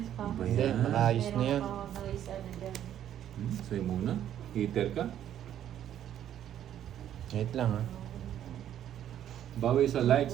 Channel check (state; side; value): quieter; left; 10.8 dB